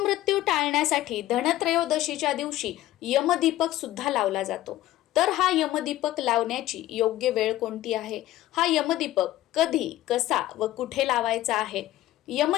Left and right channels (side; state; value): right; quieter; 14.8 dB